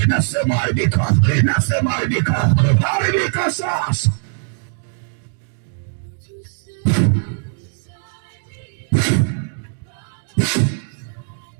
nasema haribika, nasema haribika, haribika sasa.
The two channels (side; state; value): left; silent; digital silence